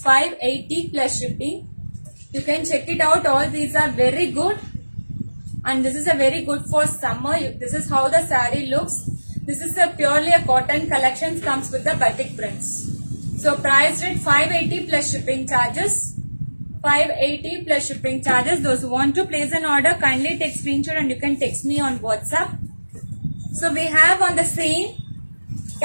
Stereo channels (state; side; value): inverted; both; correlation -1.00